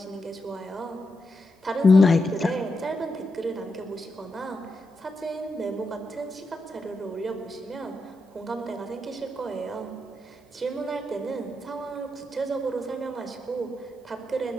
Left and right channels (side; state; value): both; normal; correlation 0.85